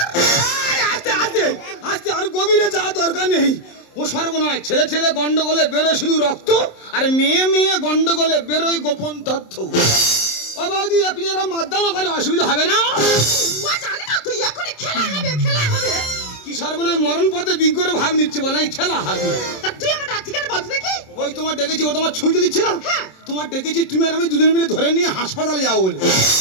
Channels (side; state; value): right; late; 27 ms